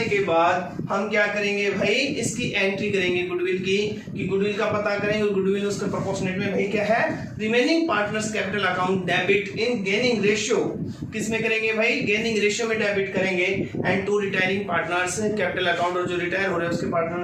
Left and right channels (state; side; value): identical; both; correlation 1.00